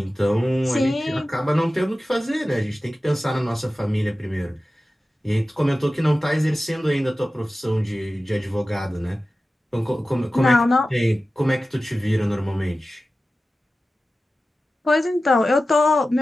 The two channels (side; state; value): both; normal; correlation 0.94